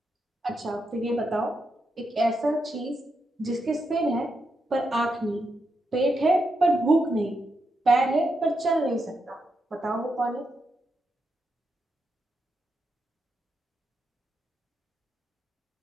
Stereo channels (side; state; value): both; normal; correlation 0.84